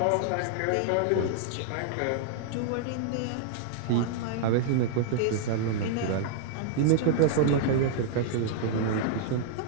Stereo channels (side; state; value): both; different; correlation -0.01